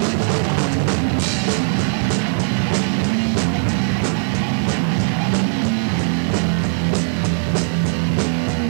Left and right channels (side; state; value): left; silent; digital silence